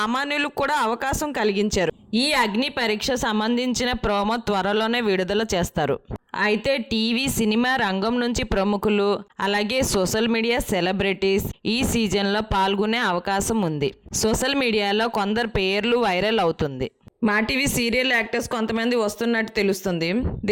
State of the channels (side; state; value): both; identical; correlation 1.00